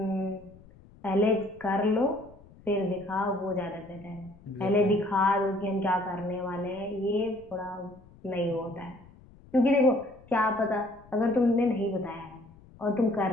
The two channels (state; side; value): noise; left; rumble, 24 dB below the sound